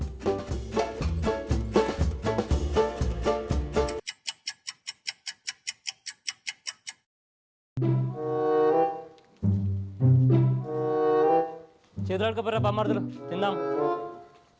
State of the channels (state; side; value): identical; both; correlation 1.00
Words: చేతులు అడుకోపోరా బొమ్మర్దులు, తిందాం.